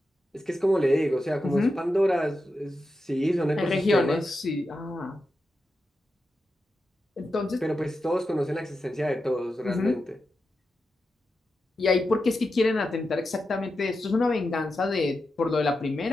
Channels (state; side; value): normal; both; correlation 0.89